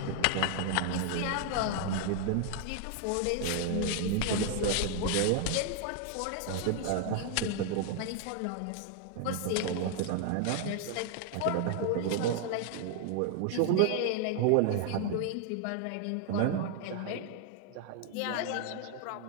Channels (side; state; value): both; different; correlation 0.00